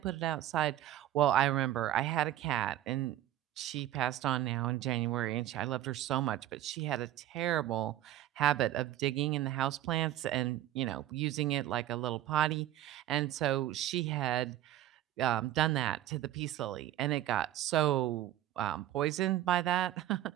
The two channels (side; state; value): left; quieter; 13.1 dB